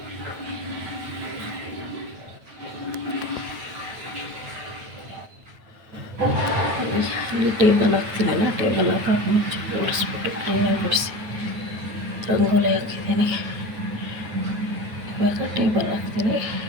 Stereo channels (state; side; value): late; left; 9.2 ms